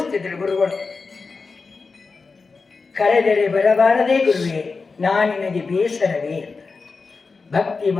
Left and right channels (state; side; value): quieter; right; 4.4 dB